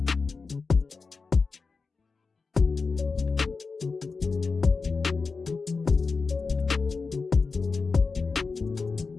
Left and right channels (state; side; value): quieter; right; 4.5 dB